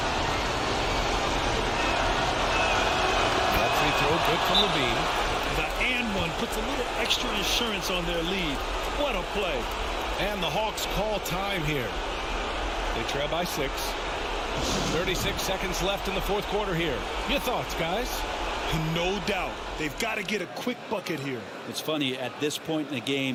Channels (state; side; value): identical; both; correlation 1.00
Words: Good from Levine. The and one puts a little extra insurance on their lead. What a play. And the Hawks call time here. They trail by 6. 36 seconds left in the fourth quarter here. Your thoughts, guys? No doubt. They've got to get a quick bucket here. It's funny, at this point in the